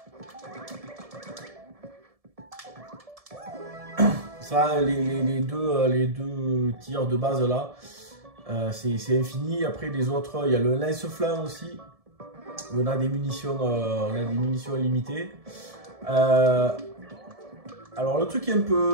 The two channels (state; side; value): late; left; 1.7 ms